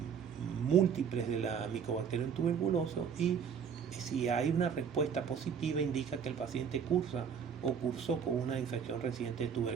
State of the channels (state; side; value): quieter; left; 7.2 dB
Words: múltiples de la Mycobacterium tuberculosis, y si hay una respuesta positiva indica que el paciente cursa o cursó con una infección reciente de